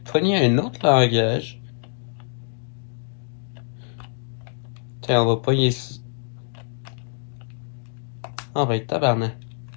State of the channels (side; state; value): right; silent; digital silence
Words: un autre langage. Tiens, on va pogner ici. Ah, va être tabarnak.